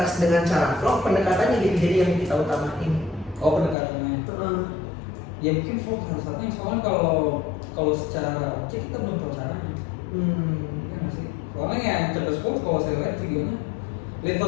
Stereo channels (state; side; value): drops out; right; at 3.8 s